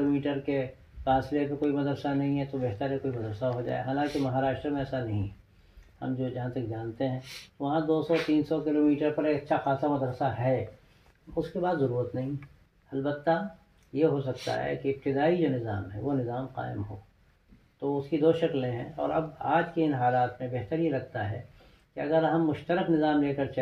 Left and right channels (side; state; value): both; identical; correlation 1.00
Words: کے فاصلے پہ کوئی مدرسہ نہیں ہے تو بہتر ہے کوئی مدرسہ ہو جائے، حالانکہ مہاراشٹر میں ایسا نہیں ہے، ہم جو جہاں تک جانتے ہیں وہاں 200 300 کلومیٹر پر ایک اچھا خاصا مدرسہ ہے، اس کے بعد ضرورت نہیں۔ البتہ یہ ہو سکتا ہے کہ ابتدائی جو نظام ہے وہ نظام قائم ہو، تو اس کی دو شکلیں ہیں، اور اب آج کے ان حالات میں بہتر یہ لگتا ہے کہ اگر ہم مشترک نظام لے کر